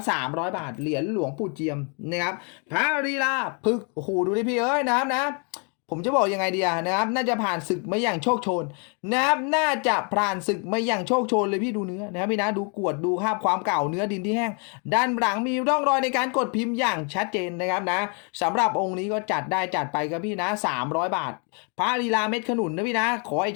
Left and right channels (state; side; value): quieter; right; 37.1 dB